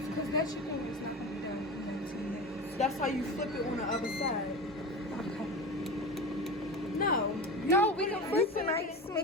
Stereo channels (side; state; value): both; normal; correlation 0.28